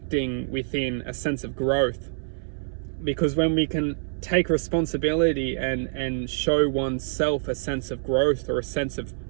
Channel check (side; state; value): left; silent; 61 dB below the other